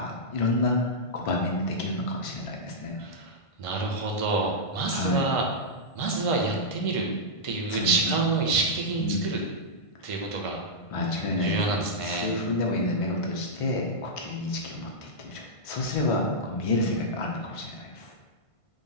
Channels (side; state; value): right; late; 1.5 ms